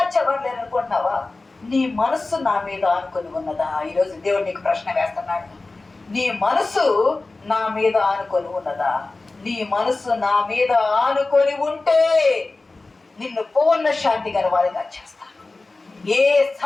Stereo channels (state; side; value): quieter; right; 3.4 dB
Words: లేరనుకుంటున్నావా, నీ మనస్సు నా మీద ఆనుకొని ఉన్నదా? ఈరోజు దేవుడు నీకు ప్రశ్న వేస్తున్నాడు. నీ మనసు నా మీద ఆనుకొని ఉన్నదా? నీ మనసు నా మీద ఆనుకొని ఉంటే నిన్ను పూర్ణ శాంతి గలవాడిగా చేస్తాను. ఏ